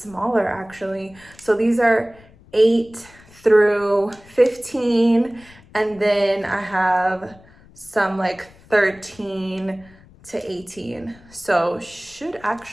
actually. So these are 8 through 15, and then I have some like 13 to 18. So should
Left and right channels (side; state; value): left; noise; rumble, 25 dB below the sound